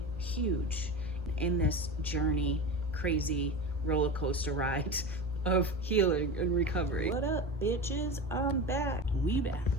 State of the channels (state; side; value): normal; both; correlation 0.27